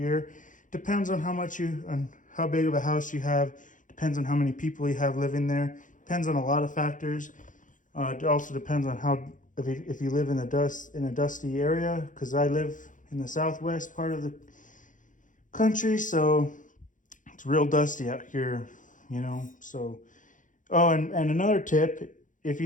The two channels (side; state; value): right; late; 0.37 ms